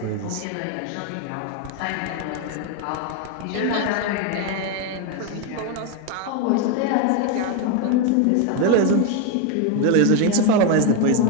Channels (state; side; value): different; both; correlation 0.02